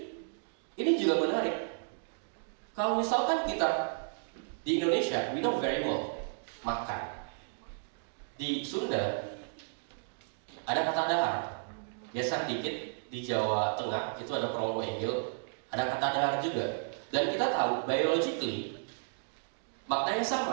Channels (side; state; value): left; silent; digital silence